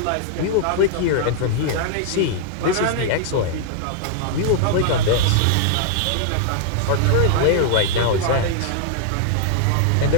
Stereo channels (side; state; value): both; different; correlation -0.01